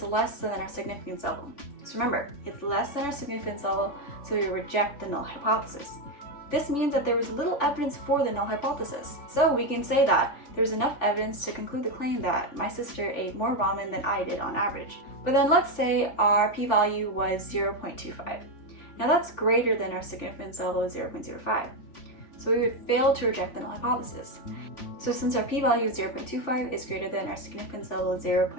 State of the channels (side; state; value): right; late; 3.5 ms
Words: less than our significance level. So remember, it's less than our significance level, so we reject the null hypothesis. This means that there was little evidence for the null hypothesis. So we can say that there's enough evidence to conclude the claim that my sister ate more ramen than I did on average. But then let's say our p-value was 0.25. Now that's greater than our significance level of 0.05. So we would fail to reject the null hypothesis. So since our p-value of 0.25 is greater than our significance level of